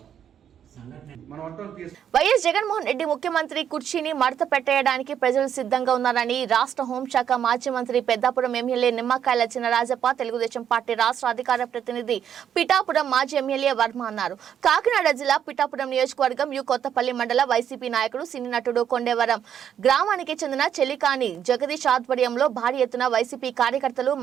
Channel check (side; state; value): left; quieter; 9.1 dB